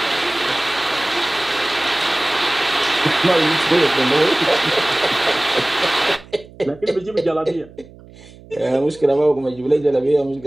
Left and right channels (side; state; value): right; noise; hum, 22 dB below the sound